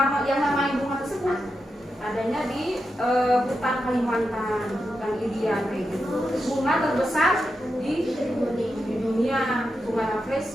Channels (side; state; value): both; normal; correlation 0.87